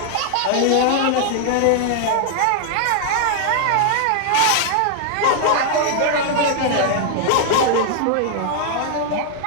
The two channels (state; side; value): different; both; correlation 0.00